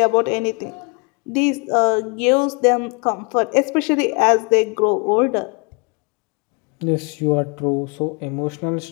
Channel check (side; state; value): right; quieter; 34.0 dB